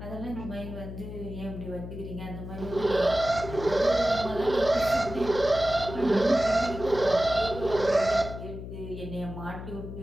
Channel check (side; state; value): left; noise; hum, 10 dB below the sound